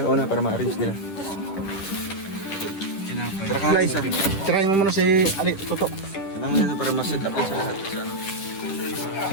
para ma-arrange nila. Tara ka isa. Tirahin mo muna si Toto. Sumama na para ma-set up din sa lahat. Sa ano.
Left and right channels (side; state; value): right; late; 10 ms